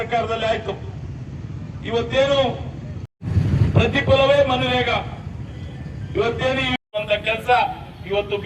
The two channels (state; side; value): identical; both; correlation 1.00